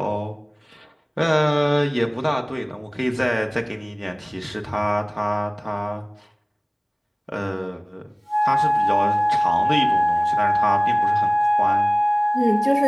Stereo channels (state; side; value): identical; both; correlation 1.00